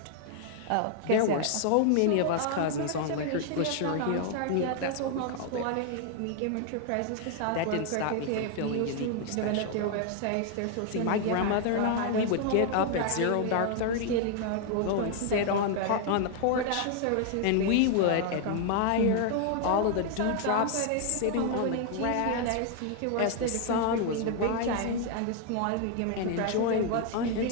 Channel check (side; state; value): both; different; correlation 0.00